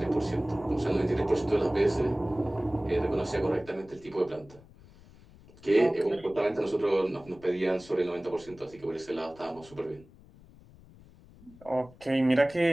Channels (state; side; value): noise; left; rumble, 23 dB below the sound